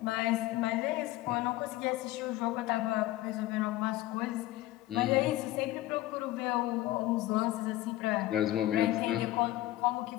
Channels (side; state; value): right; quieter; 16.2 dB